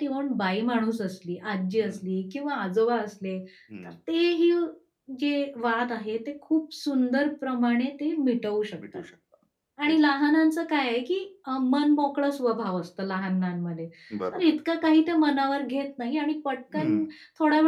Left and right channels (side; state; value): both; identical; correlation 1.00